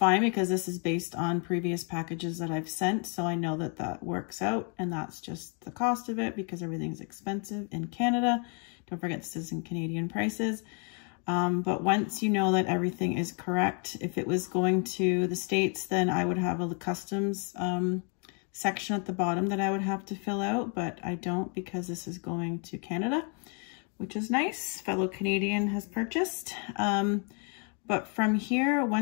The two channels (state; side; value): quieter; right; 38.3 dB